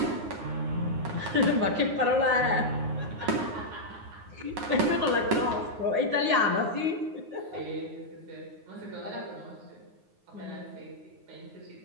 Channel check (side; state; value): left; late; 9.6 ms